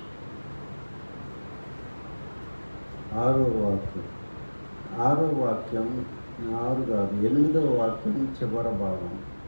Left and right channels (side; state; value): both; inverted; correlation -1.00